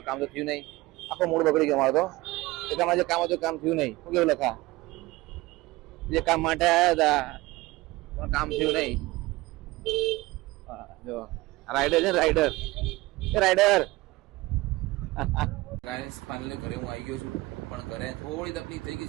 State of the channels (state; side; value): quieter; left; 20.3 dB